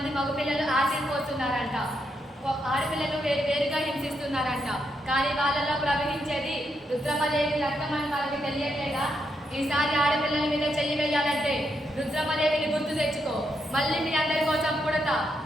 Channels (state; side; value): normal; both; correlation 0.80